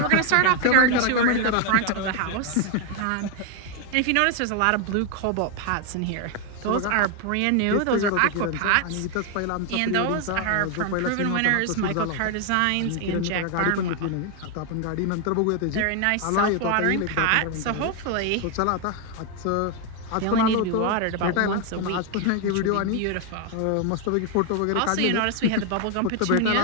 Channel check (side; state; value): both; different; correlation 0.01